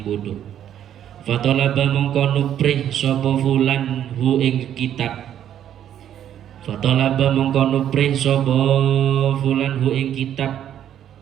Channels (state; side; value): quieter; left; 10.4 dB